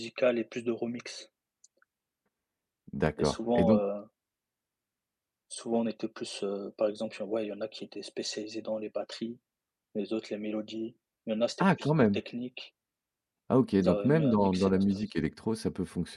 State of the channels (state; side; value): identical; both; correlation 1.00